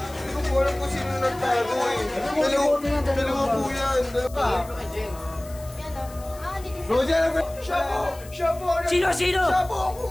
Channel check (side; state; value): left; noise; hiss, 20 dB below the sound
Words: ko po alam kung sino nagtago eh. Dalawa po yan. Roger, siya po! Siya po! Sino? Siya po ang